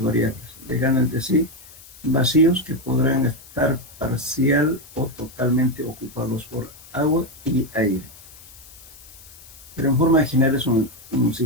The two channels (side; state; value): left; noise; hiss, 21 dB below the sound